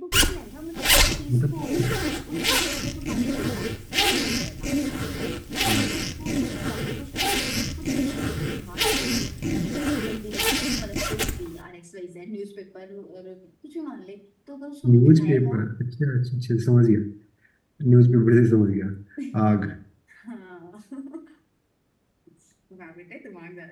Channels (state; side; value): identical; both; correlation 1.00